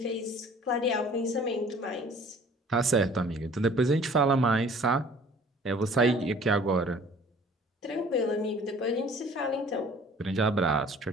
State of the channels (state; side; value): normal; both; correlation 0.51